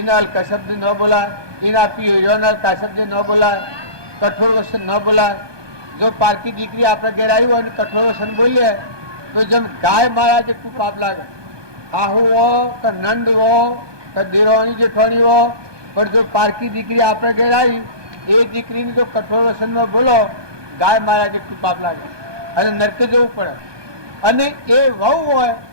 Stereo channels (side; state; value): left; late; 1.2 ms